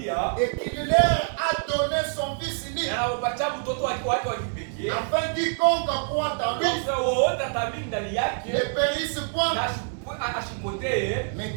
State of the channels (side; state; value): left; silent; 61 dB below the other